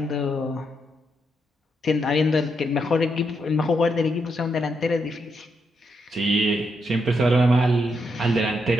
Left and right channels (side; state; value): both; normal; correlation 0.80